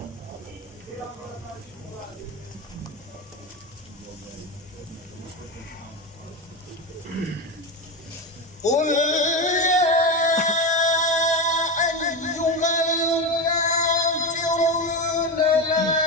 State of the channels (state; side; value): normal; both; correlation 0.16